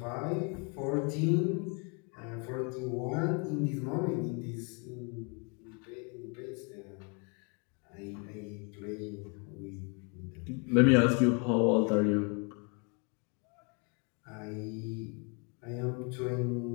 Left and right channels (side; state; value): right; quieter; 34.7 dB